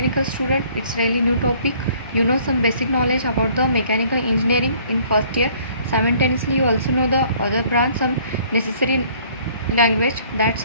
student, it's really new topic. You know some basic knowledge about the mechanical engineering in first year. Simultaneously, you also know the other branch, some necessary language. That's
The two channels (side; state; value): both; inverted; correlation -0.58